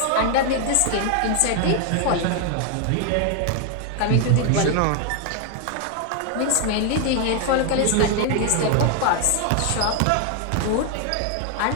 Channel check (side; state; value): both; different; correlation 0.00